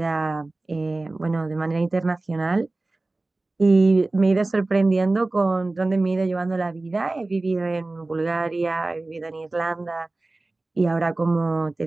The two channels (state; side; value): quieter; left; 3.1 dB